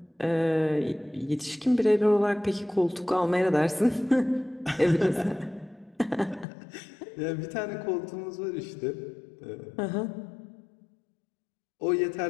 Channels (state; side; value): drops out; right; at 6.5 s